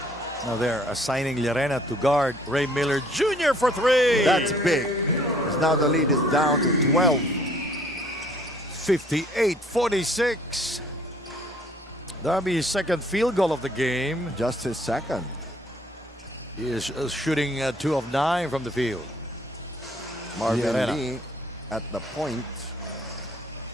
Now they're assigning Llerena to guard Ray Miller Jr. for 3. That's big. Because now the lead is down to 12. 58-46. That'll be his second field goal of the game. Just his second. He is shooting 2 of 9 from the field. Marvin Llerena. Lee at the point,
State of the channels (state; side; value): normal; both; correlation 0.60